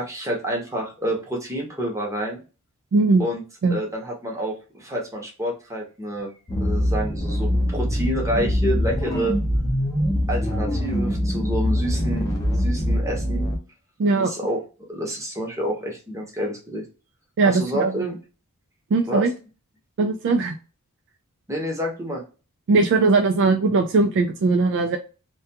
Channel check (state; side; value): normal; both; correlation 0.47